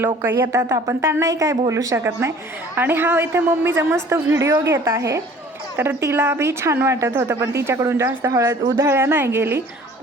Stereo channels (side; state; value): both; normal; correlation 0.50